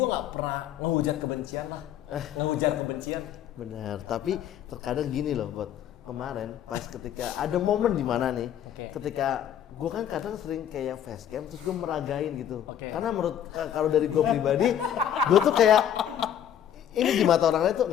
nggak pernah ngehujat kebencian lah. Ngehujat kebencian. Benar, tapi terkadang gini loh, buat kemarin pas ketika ada momen di mana nih, Oke. ketika gue kan kadang sering kayak facecam terus gue meragain gitu, Oke. karena menurut kalau dari gue pribadi, gue tuh kayak ini di mata orang lain tuh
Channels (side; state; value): right; quieter; 10.0 dB